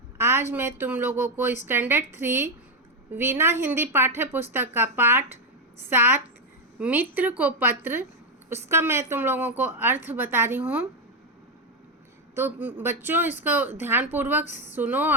आज मैं तुम लोगों को स्टैंडर्ड 3 वीणा हिंदी पाठ्य पुस्तक का पाठ 7 मित्र को पत्र, उसका मैं तुम लोगों को अर्थ बता रही हूँ। तो बच्चों, इसको ध्यानपूर्वक सुनो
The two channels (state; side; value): normal; both; correlation 0.05